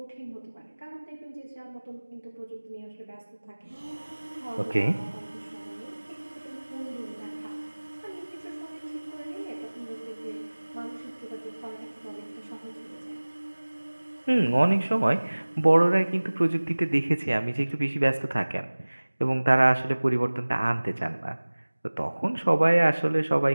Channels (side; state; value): both; inverted; correlation -1.00